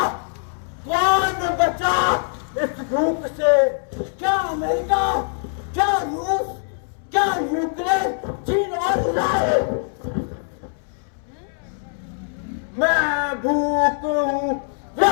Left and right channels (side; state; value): right; silent; 64 dB below the other